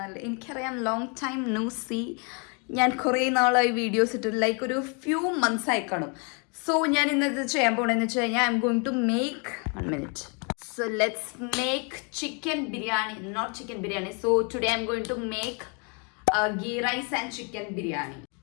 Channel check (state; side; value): quieter; right; 35.4 dB